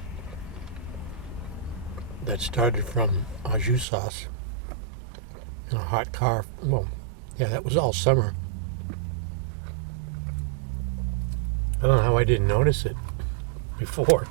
That started from au jus sauce in a hot car. Well, yeah, that was all summer. I don't know how I didn't notice it before.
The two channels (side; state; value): left; drops out; at 3.9 s